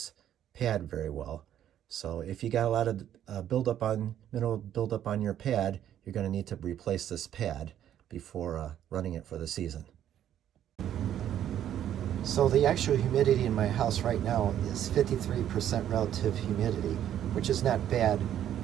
pad very well. So if you got a lot of mineral buildup on your pad, you're going to need to replace this pad before running it for the season. So the actual humidity in my house right now is 53% relative humidity, which is not bad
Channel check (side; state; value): left; quieter; 10.8 dB